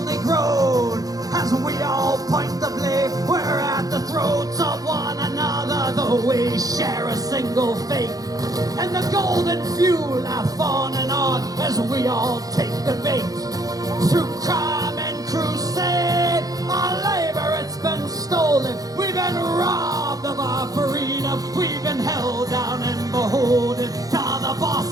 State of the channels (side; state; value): left; late; 0.18 ms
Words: grown. As we all point the blame, we're at the throats of one another, though we share a single fate. And the golden few laugh on and on as we all take the bait. Through crime and crusade, our labor it's been stolen. We've been robbed of our freedom. We've been held down and beholden to the